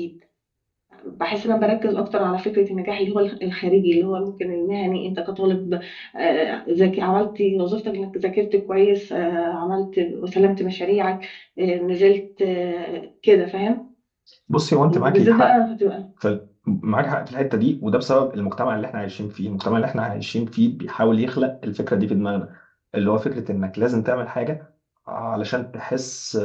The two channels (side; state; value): both; identical; correlation 1.00